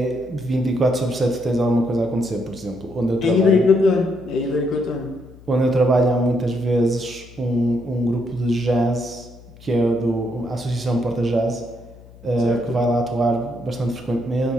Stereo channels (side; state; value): left; noise; hum, 21 dB below the sound